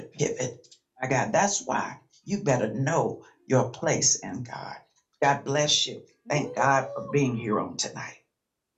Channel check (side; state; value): both; identical; correlation 1.00